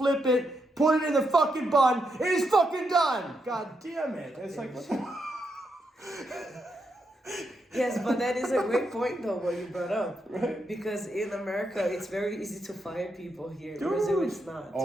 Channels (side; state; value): both; normal; correlation 0.82